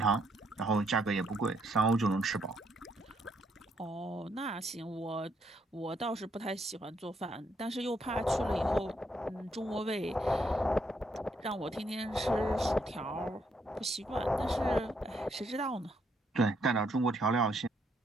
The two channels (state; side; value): normal; both; correlation 0.73